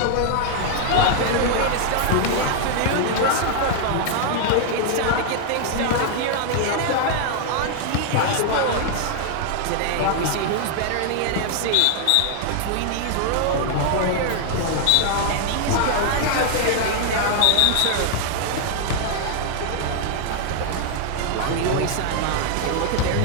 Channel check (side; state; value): both; different; correlation 0.00